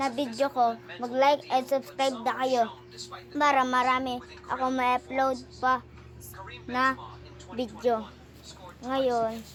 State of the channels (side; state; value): both; identical; correlation 1.00